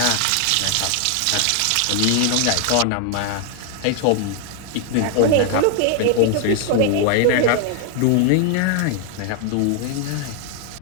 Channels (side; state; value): both; different; correlation 0.00